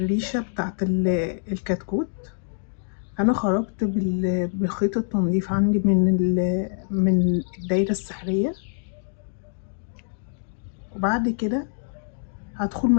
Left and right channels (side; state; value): right; silent; digital silence